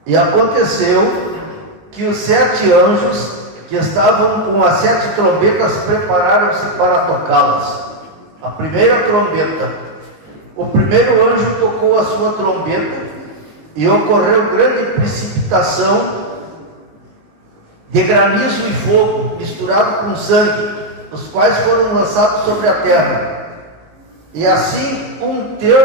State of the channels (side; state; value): left; late; 19 ms